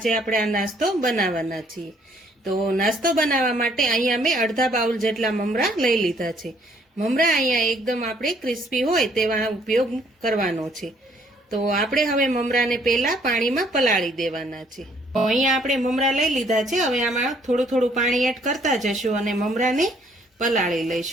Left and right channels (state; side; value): normal; both; correlation 0.64